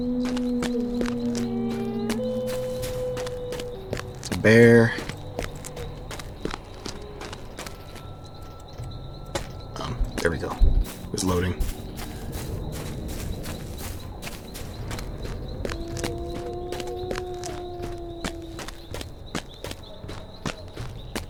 Bear. There we go. It was loading.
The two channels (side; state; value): both; identical; correlation 1.00